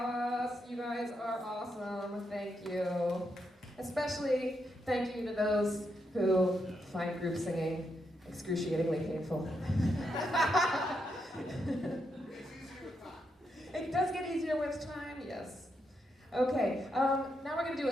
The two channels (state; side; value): normal; both; correlation 0.81